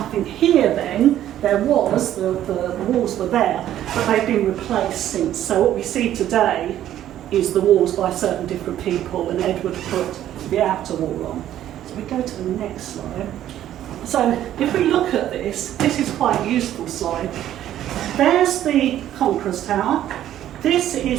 here then. There was, the walls were there, but they've been replaced since. So what we see today is the walls by certain different people, and Edward put the outer wall on. So we go to the next slide. So if we look at this is quite a useful slide. There's the Conqueror's Tower. This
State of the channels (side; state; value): left; quieter; 12.0 dB